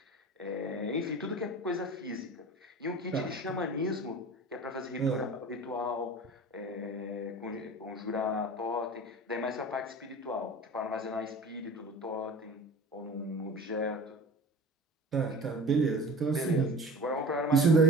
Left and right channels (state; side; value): normal; both; correlation 0.38